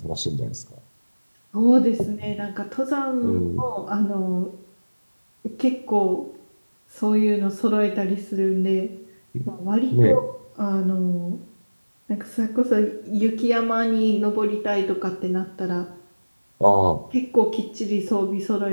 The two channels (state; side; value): inverted; both; correlation -1.00